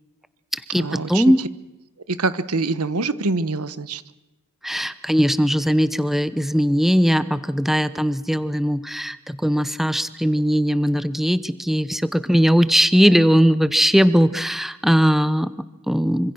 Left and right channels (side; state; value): both; normal; correlation 0.94